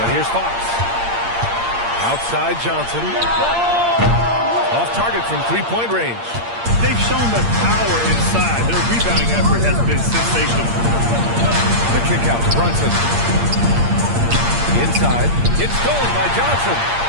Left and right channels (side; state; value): left; late; 8.7 ms